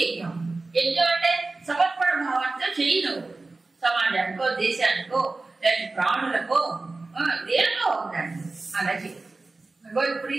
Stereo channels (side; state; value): left; quieter; 3.5 dB